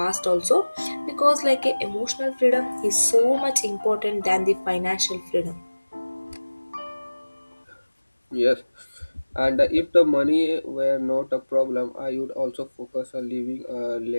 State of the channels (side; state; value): both; inverted; correlation -1.00